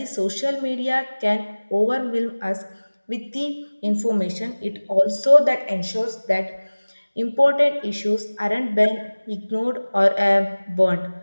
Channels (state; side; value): inverted; both; correlation -1.00